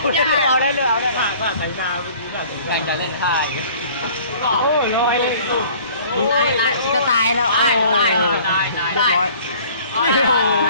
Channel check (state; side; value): inverted; both; correlation -0.51